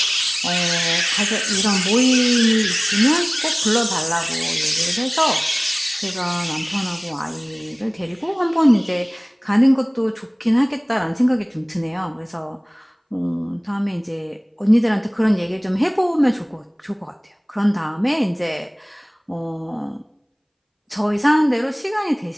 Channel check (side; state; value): both; identical; correlation 1.00